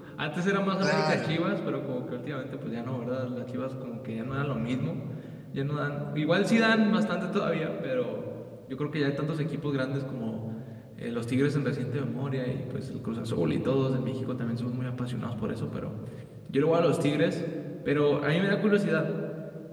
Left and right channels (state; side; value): identical; both; correlation 1.00